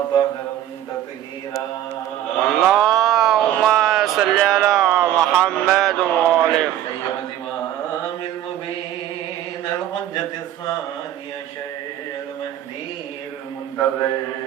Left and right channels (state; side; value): quieter; left; 12.2 dB